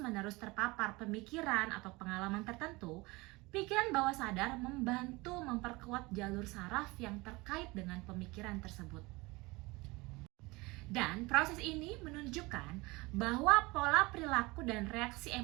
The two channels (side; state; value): left; quieter; 23.3 dB